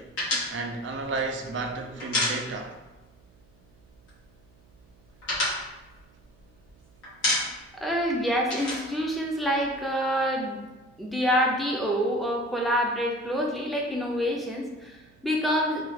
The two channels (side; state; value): right; noise; hum, 29 dB below the sound